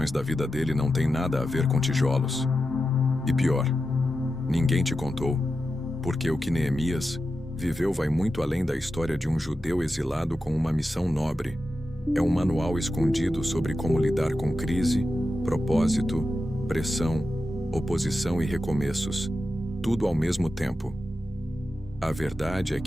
da vida dele não têm nada a ver com tijolos? E pior, ninguém te contou, porque o que Neemias viveu vai muito além da história de um judeu exilado com uma missão nobre. É um manual escondido sobre como lidar com crise, propósito, pressão, oposição e recomeços, tudo ao mesmo tempo. A verdade é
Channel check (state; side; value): normal; both; correlation 0.90